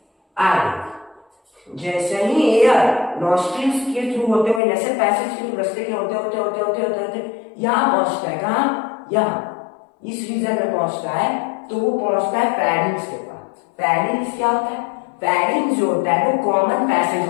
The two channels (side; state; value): right; drops out; at 4.6 s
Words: आगे जैसे ही एयर नॉस्ट्रिल्स के थ्रू होते हुए, नेसल पैसेज के थ्रू रास्ते के होते होते होते होते होते होते यहाँ पहुंचता है, कहाँ? यहाँ इस रीजन में पहुंचता है, तो वो पहुंचता है फेरिंग्स के पास। फेरिंग्स क्या होता है? फेरिंग्स जो होता है वो कॉमन पैसेज